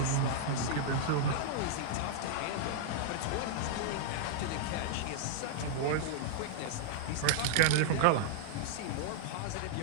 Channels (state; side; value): different; both; correlation -0.01